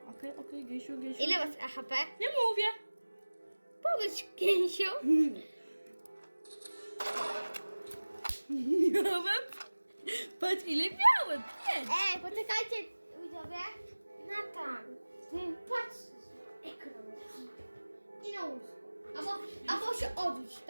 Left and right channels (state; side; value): inverted; both; correlation -1.00